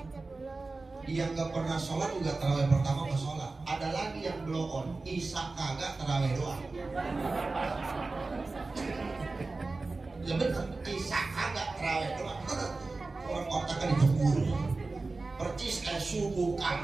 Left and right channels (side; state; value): left; quieter; 3.6 dB